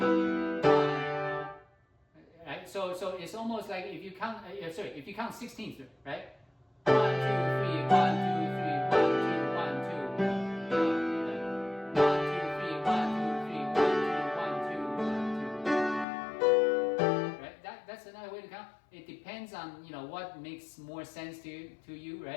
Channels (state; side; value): drops out; right; at 16.1 s